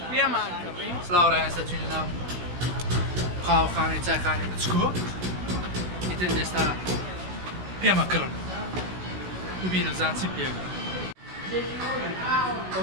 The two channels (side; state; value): left; late; 16 ms